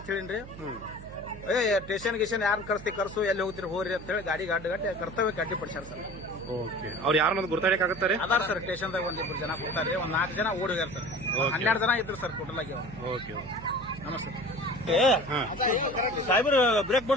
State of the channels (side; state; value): right; noise; hum, 15 dB below the sound